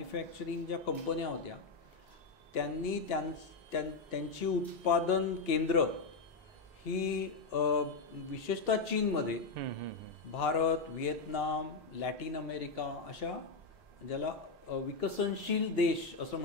ज्या कंपन्या होत्या त्यांनी त्यांची उत्पादन केंद्र ही विशेषतः चीनमध्ये, भारत, व्हिएतनाम, लॅटिन अमेरिका अशा ज्याला विकसनशील देश असं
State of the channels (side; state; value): right; quieter; 4.2 dB